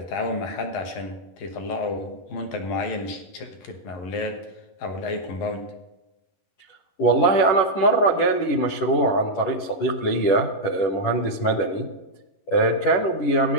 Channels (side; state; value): right; late; 11 ms